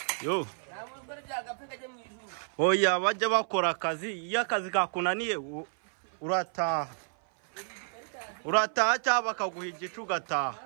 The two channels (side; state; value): left; silent; 57 dB below the other